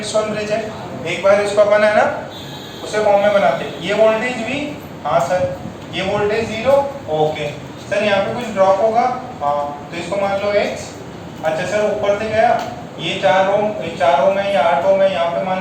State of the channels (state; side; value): identical; both; correlation 1.00